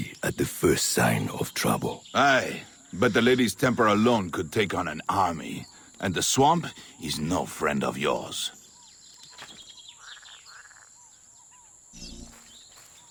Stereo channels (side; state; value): both; identical; correlation 1.00